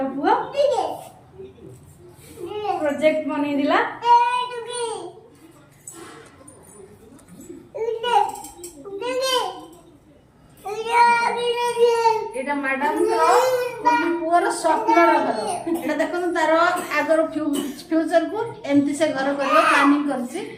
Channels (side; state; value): both; identical; correlation 1.00